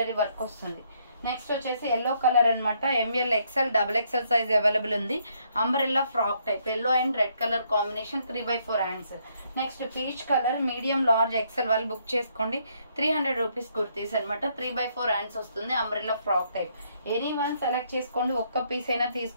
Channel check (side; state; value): both; inverted; correlation -0.71